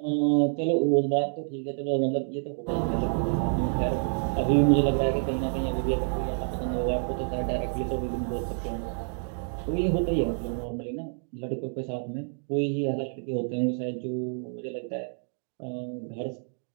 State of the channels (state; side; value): silent; left; 56 dB below the other